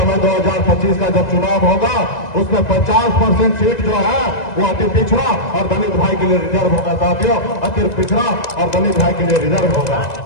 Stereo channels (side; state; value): right; late; 1.9 ms